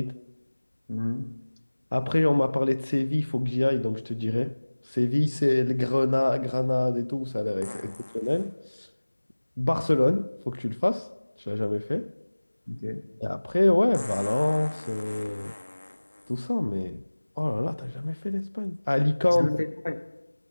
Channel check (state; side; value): inverted; both; correlation -1.00